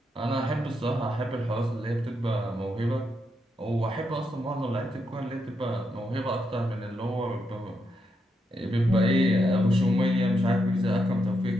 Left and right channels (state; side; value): normal; both; correlation 0.82